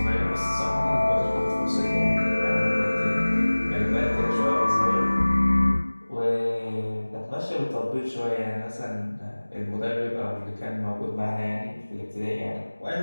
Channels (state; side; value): inverted; both; correlation -1.00